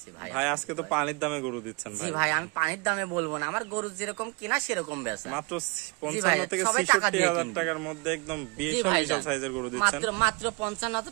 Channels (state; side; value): quieter; left; 29.8 dB